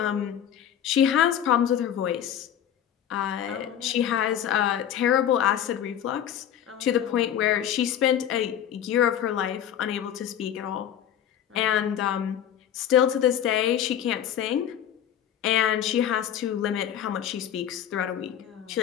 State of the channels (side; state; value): right; quieter; 10.1 dB